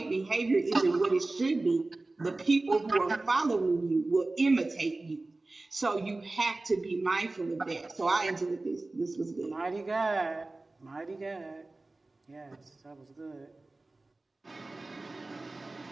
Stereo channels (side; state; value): left; quieter; 3.1 dB